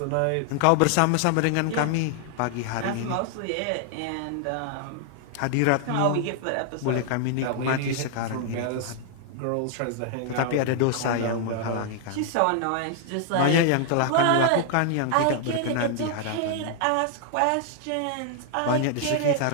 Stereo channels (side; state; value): both; different; correlation 0.00